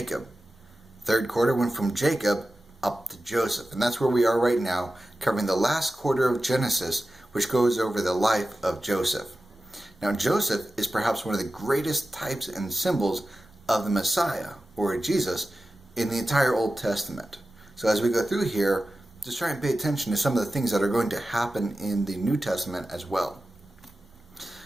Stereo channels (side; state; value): both; normal; correlation 0.94